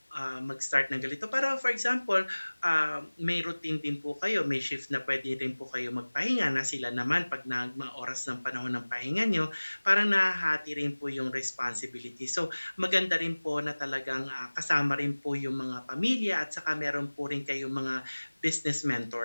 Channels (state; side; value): inverted; both; correlation -1.00